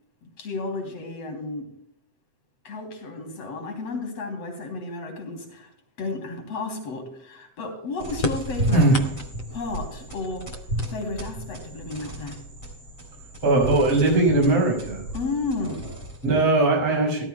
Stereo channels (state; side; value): late; right; 7.8 ms